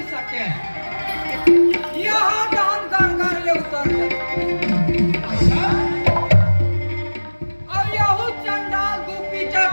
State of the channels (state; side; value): inverted; both; correlation -1.00